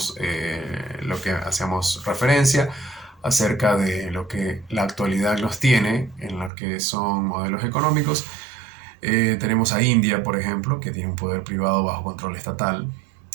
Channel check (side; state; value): left; drops out; at 6.5 s